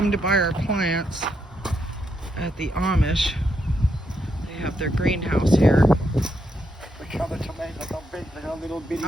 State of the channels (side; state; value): both; normal; correlation 0.80